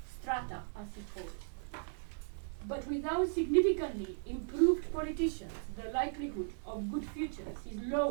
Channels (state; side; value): silent; left; 53 dB below the other